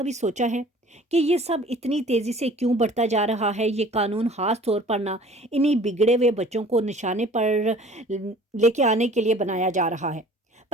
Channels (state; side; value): normal; both; correlation 0.49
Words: سوچا ہے کہ یہ سب اتنی تیزی سے کیوں بڑھتا جا رہا ہے؟ یہ قانون خاص طور پر نہ انہی بگڑے ہوئے بچوں کو نشانے پر لے کے آنے کے لیے بنایا جا رہا ہے،